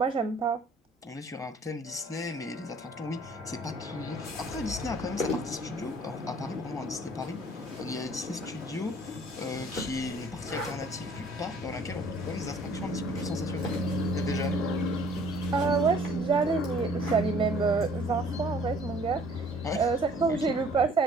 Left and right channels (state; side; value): normal; both; correlation 0.55